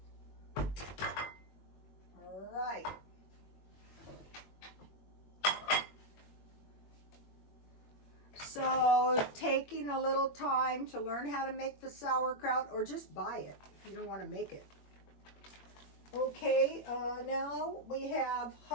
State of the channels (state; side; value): late; right; 21 ms